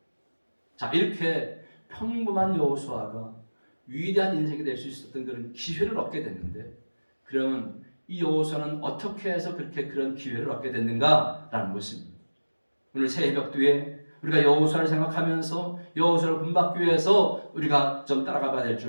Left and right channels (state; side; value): inverted; both; correlation -1.00